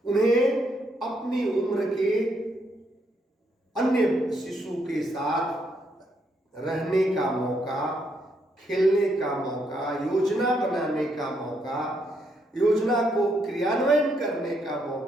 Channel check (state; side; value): normal; both; correlation 0.75